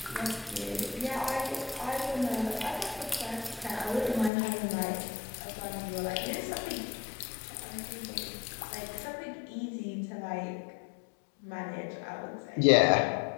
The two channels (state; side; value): drops out; right; at 4.3 s